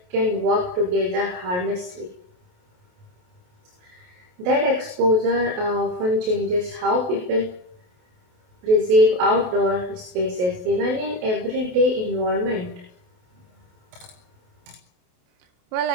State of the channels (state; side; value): late; left; 28 ms